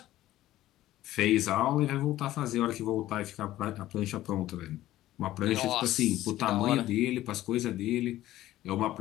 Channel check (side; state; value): right; quieter; 14.8 dB